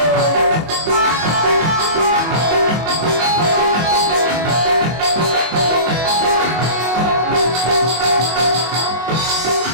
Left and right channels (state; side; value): late; left; 24 ms